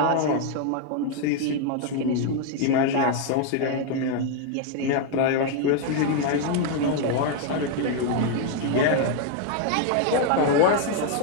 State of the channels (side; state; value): both; different; correlation 0.00